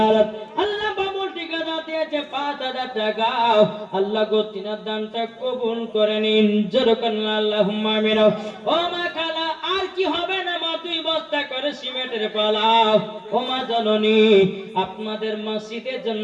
আল্লাহ বাবুল ঠিকাদার দিয়েছে 5000 টাকা। আল্লাহ গো তিনার দানটা কবুল করে নিন, জোরকান আল্লাহুম্মা আমিন। ও মা খালা, আর কি হবে না মা, 2 বস্তা করে সিমেন্টের পালাও। ও মা জননী, আপনাদের মসজিদের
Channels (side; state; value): both; identical; correlation 1.00